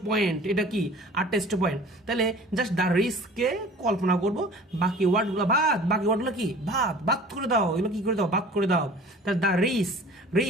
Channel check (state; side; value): normal; both; correlation 0.44